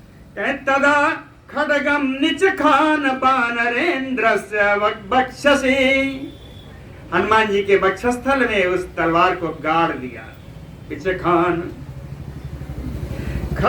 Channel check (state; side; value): identical; both; correlation 1.00